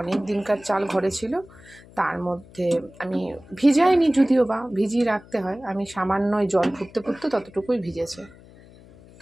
অনেক দিনকার চাল ঘরে ছিল, তার মধ্যে আমি ভিজাইনি, যদিও বা ভিজিয়ে রাখতে হয়, আমি সামান্য জল ফুটতে ফুটতে ততটুকুই ভিজেছে,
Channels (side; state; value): left; noise; hum, 23 dB below the sound